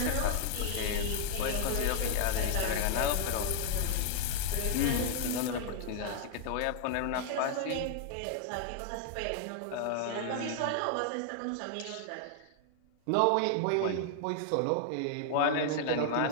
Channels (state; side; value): different; both; correlation 0.00